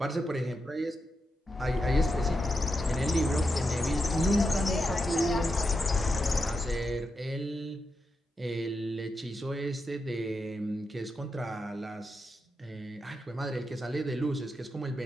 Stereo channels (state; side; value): normal; both; correlation 0.86